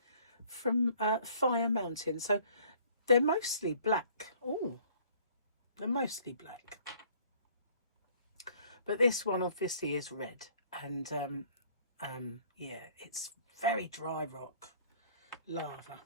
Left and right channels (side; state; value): both; inverted; correlation -0.57